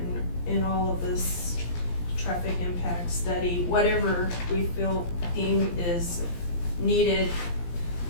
and all of this traffic impact study, whatever we deem is needed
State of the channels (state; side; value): late; right; 17 ms